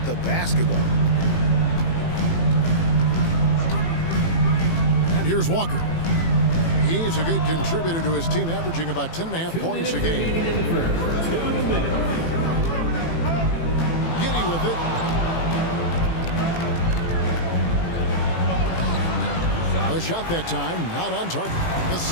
the basketball. And here's Walker. He's a good contributor to his team, averaging about 10.5 points a game. In the first. 2 minutes. Giddey with it. A shot that time, not on target. The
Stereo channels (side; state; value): right; late; 18 ms